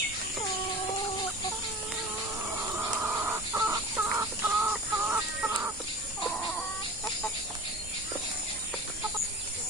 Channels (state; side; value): normal; both; correlation 0.37